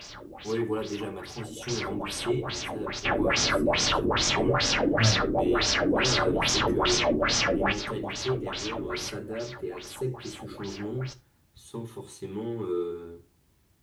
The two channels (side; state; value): both; identical; correlation 1.00